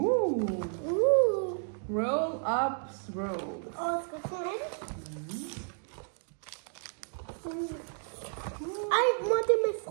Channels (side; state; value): left; silent; 55 dB below the other